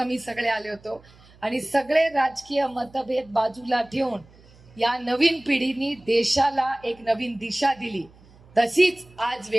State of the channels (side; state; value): right; noise; hum, 26 dB below the sound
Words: सगळे आले होतो आणि सगळे राजकीय मतभेद बाजूला ठेवून या नवीन पिढीने देशाला एक नवीन दिशा दिली. तशीच आज